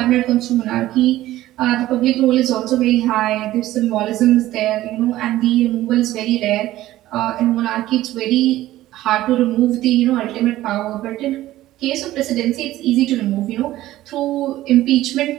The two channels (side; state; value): left; quieter; 15.2 dB